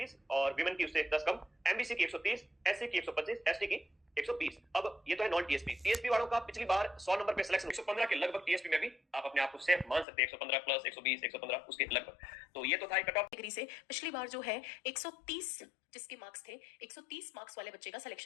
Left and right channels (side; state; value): right; drops out; at 10.1 s